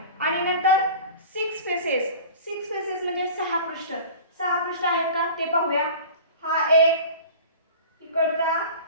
आणि नंतर 6 फेसेस म्हणजे 6 पृष्ठ. 6 पृष्ठ आहेत का ते पाहूया. हा 1, इकडचा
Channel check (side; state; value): both; inverted; correlation -0.39